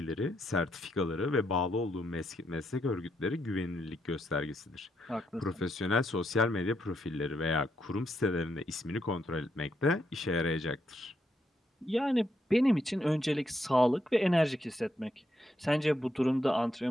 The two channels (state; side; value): normal; both; correlation 0.78